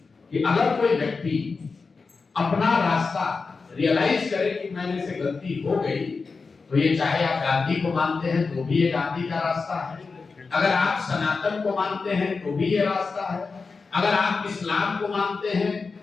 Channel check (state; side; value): quieter; right; 4.5 dB